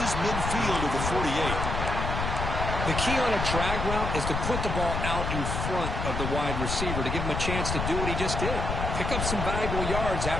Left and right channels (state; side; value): noise; left; rumble, 2 dB below the sound